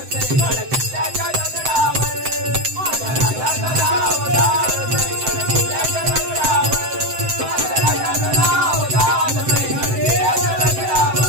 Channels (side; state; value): left; late; 7.7 ms